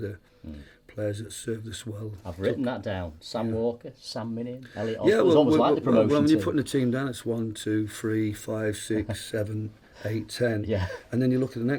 players that served us well. I've written that down. Sam Walker, Sam Minion, Elliot Oswald. It's almost like the promotion when team. you're putting the team down, it's 1, 2, 3, 5, 6, 7, 8, 10. Yeah. And then you look at the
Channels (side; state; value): both; identical; correlation 1.00